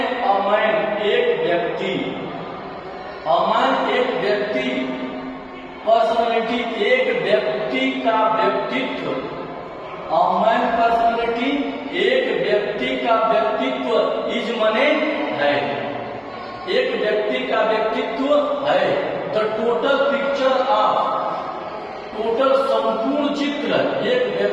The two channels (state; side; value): identical; both; correlation 1.00